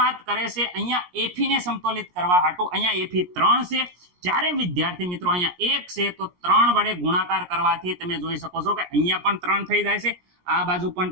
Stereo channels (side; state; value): left; late; 17 ms